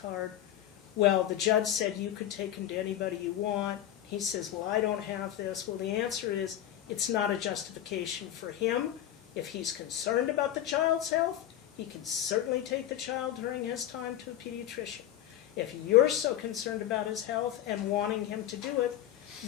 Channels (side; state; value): right; quieter; 11.9 dB